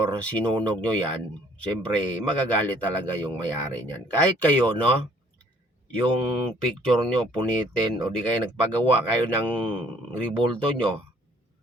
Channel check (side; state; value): both; normal; correlation 0.60